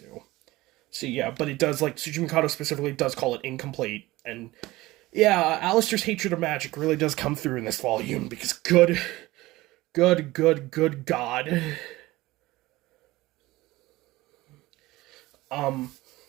So yeah, but it does, like, Tsuchi Mikado specifically does call it incomplete, and yeah, Alistair's hatred of magic really does come through in this volume, because good God.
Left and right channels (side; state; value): left; quieter; 18.9 dB